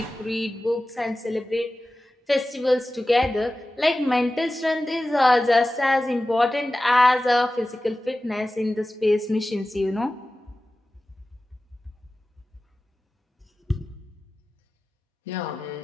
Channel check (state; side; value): normal; both; correlation 0.95